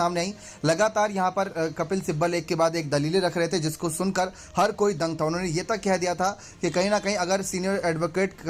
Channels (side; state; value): both; identical; correlation 1.00